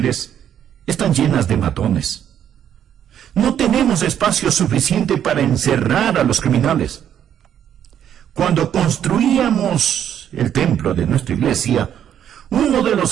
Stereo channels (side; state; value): left; quieter; 9.7 dB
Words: están llenas de matones. No tenemos espacio suficiente para encerrar a los criminales. Cuando construíamos el templo de nuestra iglesia, uno de